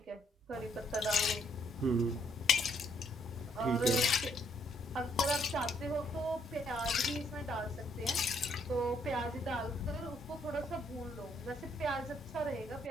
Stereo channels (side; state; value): both; normal; correlation 0.69